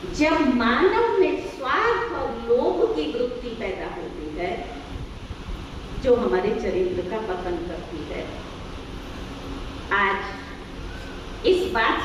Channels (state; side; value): identical; both; correlation 1.00